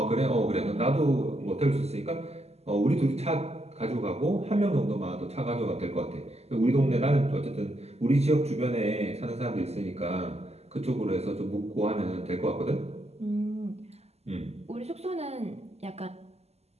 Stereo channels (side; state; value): left; late; 0.30 ms